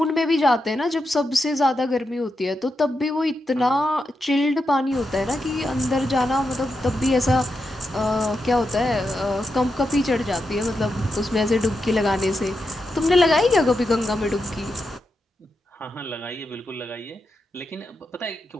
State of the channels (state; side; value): normal; both; correlation 0.86